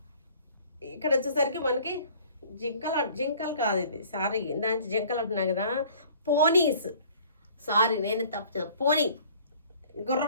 ఇక్కడ వచ్చేసరికి మనకి జింకలు కాదు ఇది, సారీ ఇందాక జింకలు అంటున్నా కదా, పోనీస్. సారీ నేను తప్పు, పోనీ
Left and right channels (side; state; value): both; inverted; correlation -0.52